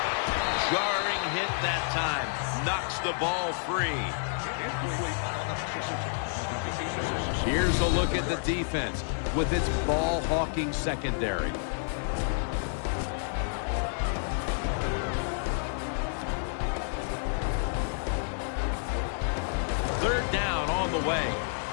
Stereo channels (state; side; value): silent; right; 58 dB below the other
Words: Jarring hit that time. Knocks the ball free. Here's a look at the defense with its ball-hawking secondary. Third down on the way.